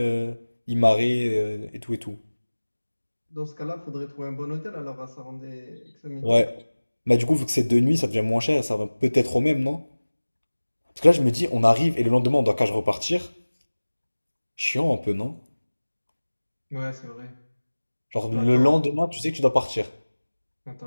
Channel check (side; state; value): both; inverted; correlation -1.00